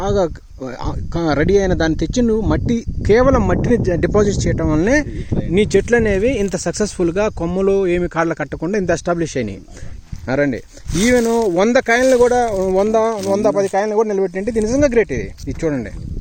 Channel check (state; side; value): identical; both; correlation 1.00